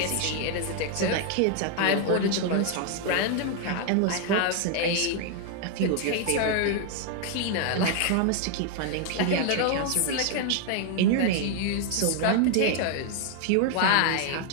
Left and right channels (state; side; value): different; both; correlation 0.00